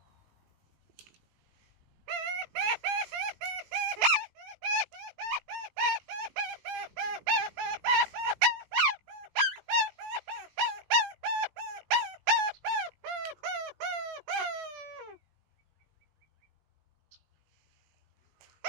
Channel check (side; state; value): left; late; 19 ms